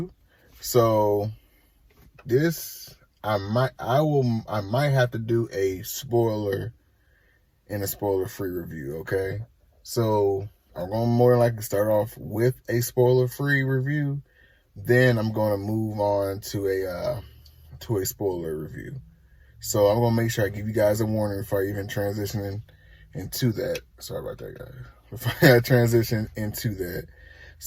So this I might have to do a spoiler and a spoiler-free review, okay? So I'm going to more than likely start off with a spoiler-free review. Then I'm going to move on to a spoiler review. So I'm going to make sure I give you guys a warning before I even transition into that. Sorry about that, guys. Before I transition into that.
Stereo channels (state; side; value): identical; both; correlation 1.00